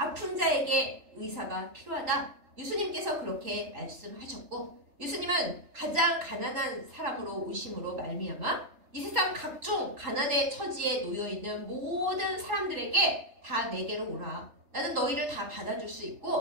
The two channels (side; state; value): left; late; 3.4 ms